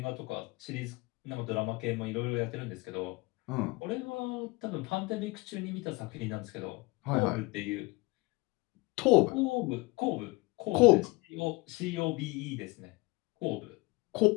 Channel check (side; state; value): right; quieter; 23.8 dB